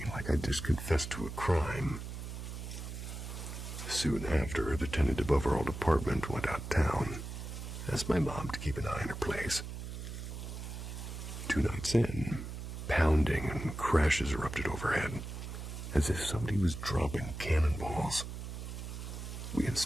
like I'd just confessed to a crime. Soon after, the tenant above our old apartment went out of town, asked my mom to keep an eye on her place. 2 nights in, pounding and crashes erupted overhead, as if somebody was dropping cannonballs. We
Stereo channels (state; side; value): noise; right; hum, 7 dB below the sound